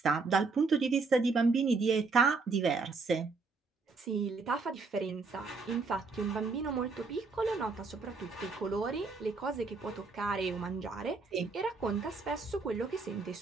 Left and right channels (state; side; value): quieter; left; 4.2 dB